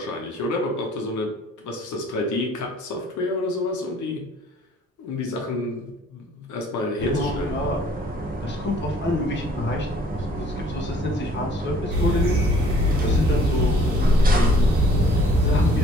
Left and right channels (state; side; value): normal; both; correlation 0.57